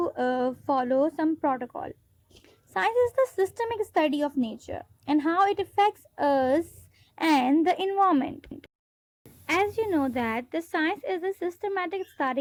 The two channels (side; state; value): both; identical; correlation 1.00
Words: follow some protocol. Science is the systemic study of nature and how it affects us and the environment. As you know that the science is a systematic